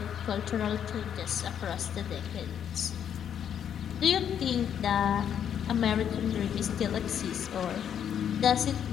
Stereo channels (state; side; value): quieter; right; 8.9 dB